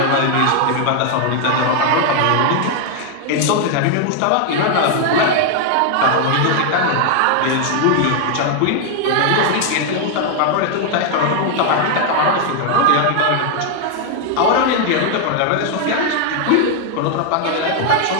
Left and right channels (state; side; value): different; both; correlation 0.00